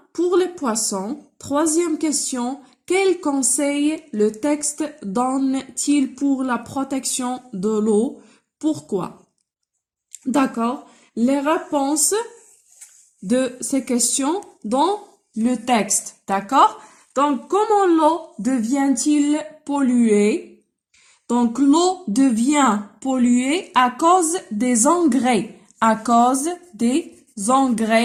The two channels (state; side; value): identical; both; correlation 1.00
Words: pour les poissons? Troisième question, quel conseil le texte donne-t-il pour la protection de l'eau? Pourquoi? D'accord. Les réponses de ces questions dans le texte. D'accord. Donc, comment l'eau devient-il polluée? Donc, l'eau devient polluée à cause des engrais. À cause des